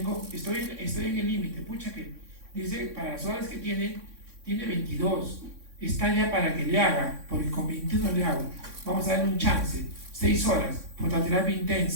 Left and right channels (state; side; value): late; left; 3.6 ms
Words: estoy en el límite, pucha que dice, para las horas que tiene 22, está ya para que le haga, porque con 21 le hago, vamos a darle un chance, 6 horas, fototerapia